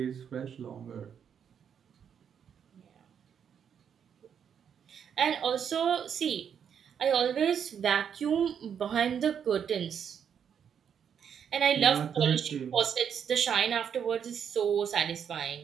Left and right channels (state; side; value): quieter; left; 7.9 dB